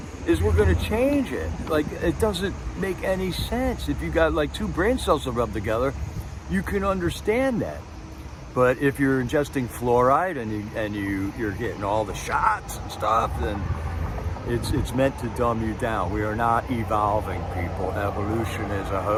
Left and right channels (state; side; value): identical; both; correlation 1.00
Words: is we're going to change it. It doesn't make any sense. If you got two brain cells to rub together, you can understand that. But if you're ingesting fluoride and you're getting all the shots and stuff, then it's meant to dumb you down. We are not evolving, people. Evolution is a